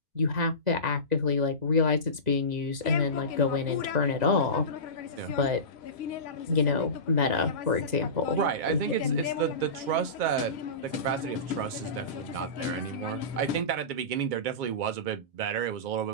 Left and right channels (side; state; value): left; late; 2.0 ms